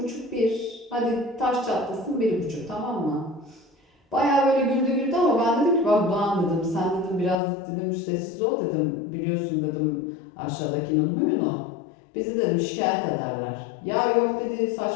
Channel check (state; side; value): drops out; right; at 7.4 s